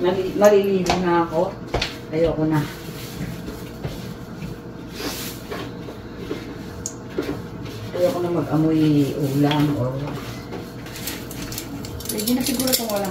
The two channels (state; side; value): identical; both; correlation 1.00